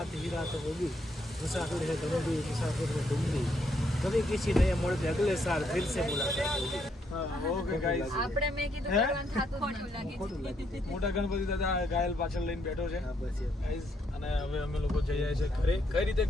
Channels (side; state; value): both; normal; correlation 0.74